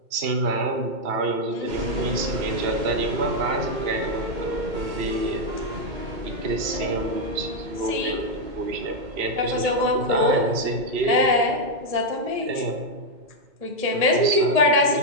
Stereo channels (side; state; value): left; late; 2.8 ms